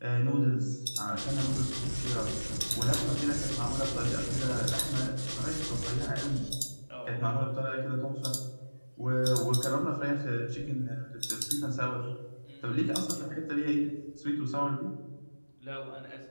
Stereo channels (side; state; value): both; inverted; correlation -1.00